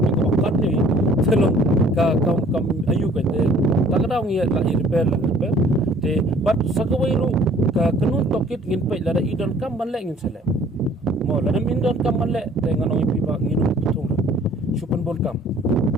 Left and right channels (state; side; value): normal; both; correlation 0.55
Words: ka kat ni telong ka kam ayu kan de tak ada ngi la repair de but sakawai ru ka kanun tokit ngin pe lada idon kam ban le ngin sele mo lada min don kam ban le te nganong ipi ba ngin thung supan bol kam